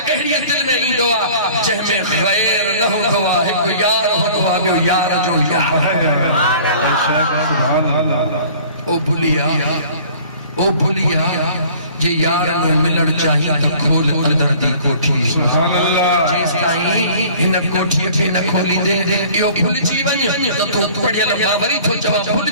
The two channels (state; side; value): inverted; both; correlation -0.49